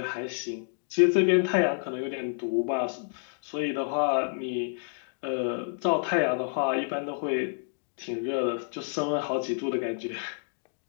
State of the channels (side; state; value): right; silent; digital silence